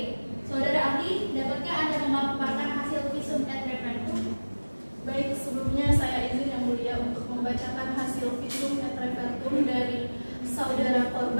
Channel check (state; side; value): inverted; both; correlation -1.00